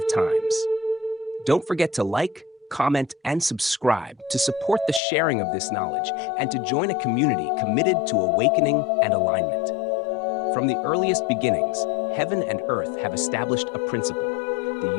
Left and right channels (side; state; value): right; drops out; at 5.0 s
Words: times. Don't forget to like, comment, and subscribe to support the sharing of this knowledge and to join a community committed to awakening and alignment. From the earliest beginnings, heaven and earth have established a principle. The